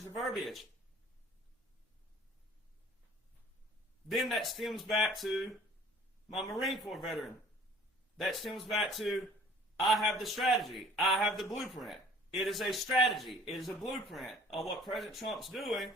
the verbiage. Then that stems back to my Marine Corps veteran. That stems back to, I have the strategy. I have the blueprint. It is a strategy. It is a blueprint of what President Trump's doing,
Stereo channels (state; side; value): normal; both; correlation 0.52